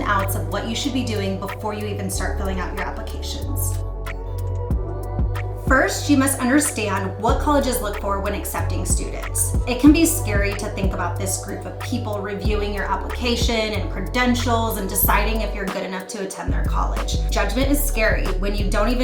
outs of what you should be doing before you even start filling out your applications. First, you must understand what colleges look for when accepting students. It can be scary to think about this group of people reviewing your application and credentials and deciding if you're good enough to attend their college. Judgment is scary when you don't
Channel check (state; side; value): identical; both; correlation 1.00